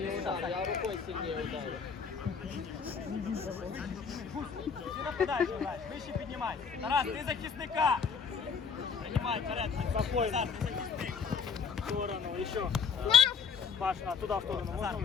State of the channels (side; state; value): right; quieter; 6.0 dB